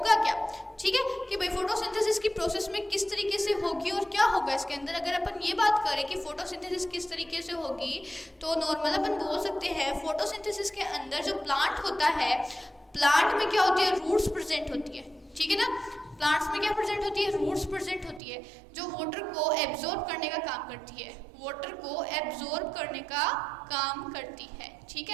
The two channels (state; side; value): drops out; left; at 18.2 s